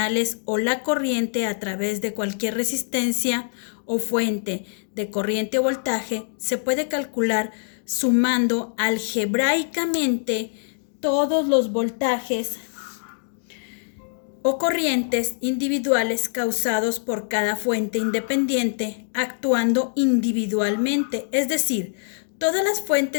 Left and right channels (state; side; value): silent; right; digital silence